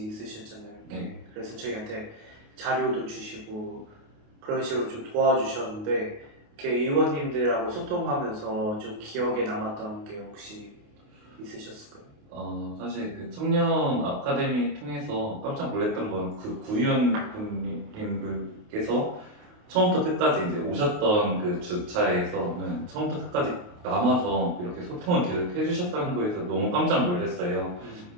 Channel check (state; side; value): late; left; 28 ms